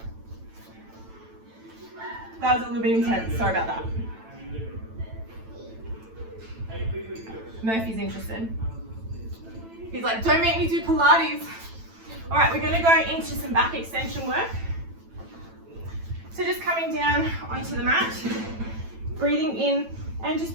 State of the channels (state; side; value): late; left; 9.0 ms